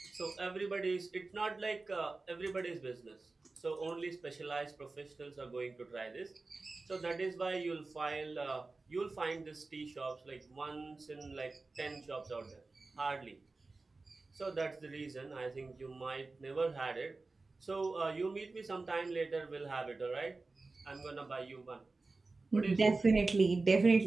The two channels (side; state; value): left; quieter; 3.6 dB